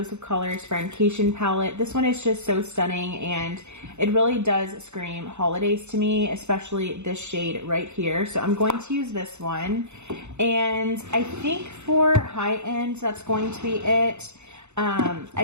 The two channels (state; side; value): late; left; 0.82 ms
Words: of Colors Friendcation palette. This one is just so stunning, and it really does scream holidays to me, especially this shade right here. So I'm going to use this one. And I think for high end, that's going to be it.